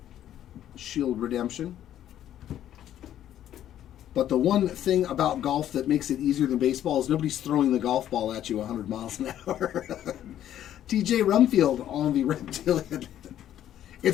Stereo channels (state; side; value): quieter; right; 11.4 dB